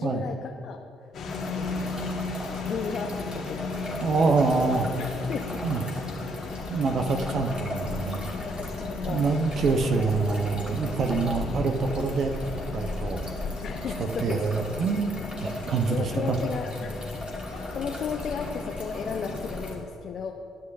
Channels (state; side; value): normal; both; correlation 0.70